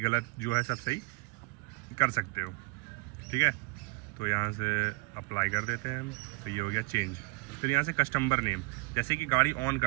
जो है सब सही कर सकते हो, ठीक है। तो यहाँ से अप्लाई कर देते हैं हम, तो ये हो गया चेंज। फिर यहाँ से कस्टमर नेम, जैसे कि गाड़ी ऑन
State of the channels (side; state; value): left; quieter; 25.7 dB